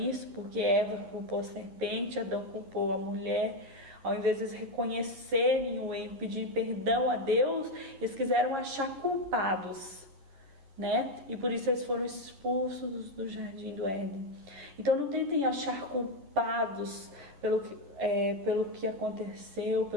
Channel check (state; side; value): late; left; 11 ms